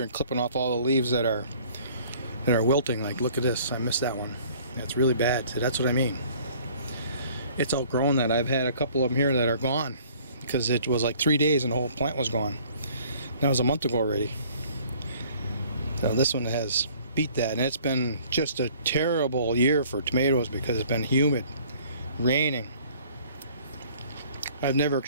and clipping off all the leaves that are wilting. Like, look at this. I missed that one. That's really bad. So that's what I mean. It's outgrown that. I've had a couple of them here that are gone because it was like 3 days and the whole plant was gone. That was a month ago already. So this one has beat that, and it's been just a terrible year for tomatoes because it's been humid, raining. I've never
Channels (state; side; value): inverted; both; correlation -0.55